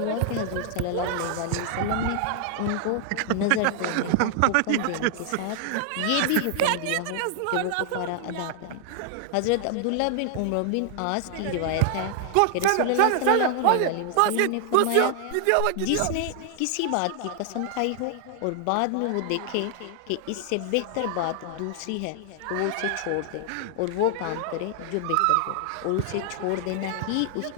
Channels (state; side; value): different; both; correlation 0.00